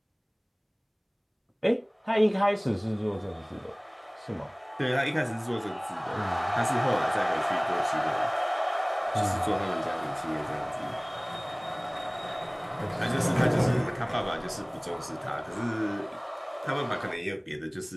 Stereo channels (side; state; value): both; identical; correlation 1.00